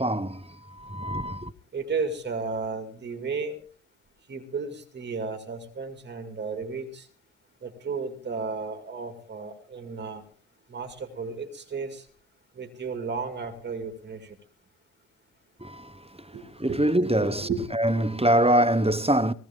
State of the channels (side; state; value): both; normal; correlation 0.45